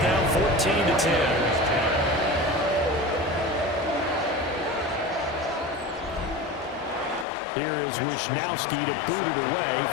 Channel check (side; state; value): right; drops out; at 7.2 s